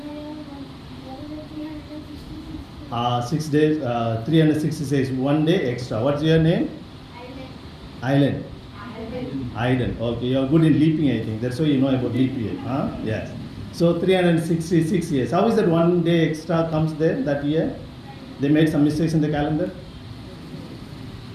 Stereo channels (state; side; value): identical; both; correlation 1.00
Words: And 6 days, 366, 1 day extra. What's your name? Island. Okay, you're good in leaping, I think. That's why you know about leap year. Yes. So 366 years. How is that 1 day extra comes there that year? They made some mistakes in the calendar?